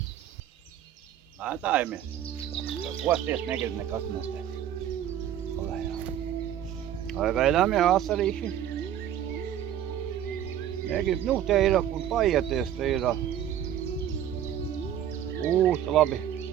Mētājamies. Kosties negrib nekas nestēt. Vai gaidām jau asarīši? Negrib, nu te ir, kur paieties, te ir. Labi.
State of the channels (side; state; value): left; quieter; 10.6 dB